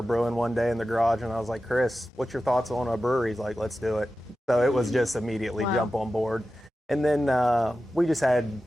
brewing one day in the garage, and I was like, Chris, what's your thoughts on a brewery? He's like, let's do it. So it was just immediately jump on board. And then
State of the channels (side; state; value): both; normal; correlation 0.93